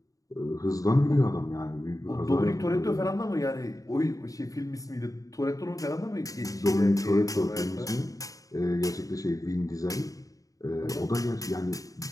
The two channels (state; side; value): late; right; 0.17 ms